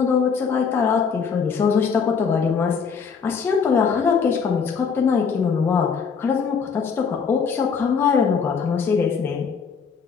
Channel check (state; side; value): quieter; right; 6.0 dB